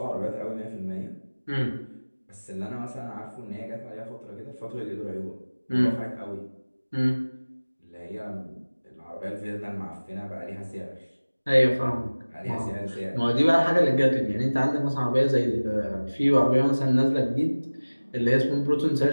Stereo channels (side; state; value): both; inverted; correlation -1.00